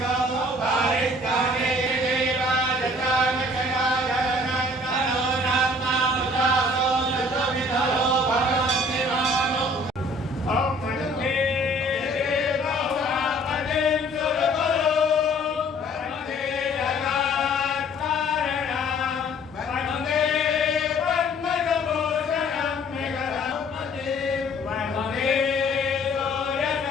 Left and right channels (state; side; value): normal; both; correlation 0.55